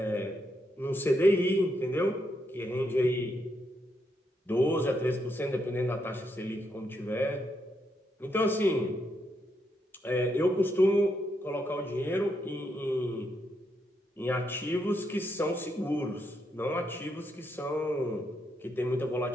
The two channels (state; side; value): normal; both; correlation 0.79